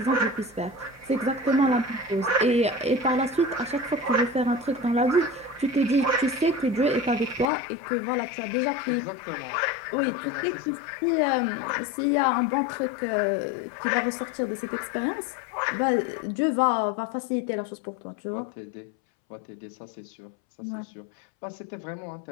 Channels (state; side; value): drops out; right; at 7.5 s